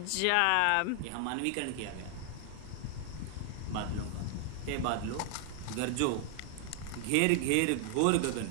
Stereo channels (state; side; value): different; both; correlation 0.00